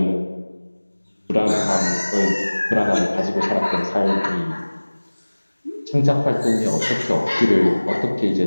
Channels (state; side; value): inverted; both; correlation -1.00